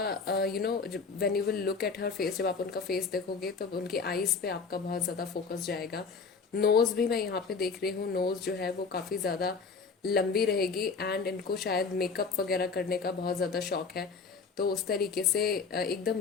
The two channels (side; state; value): right; quieter; 5.0 dB